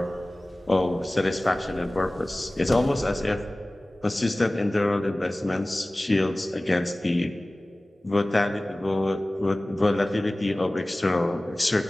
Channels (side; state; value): both; normal; correlation 0.98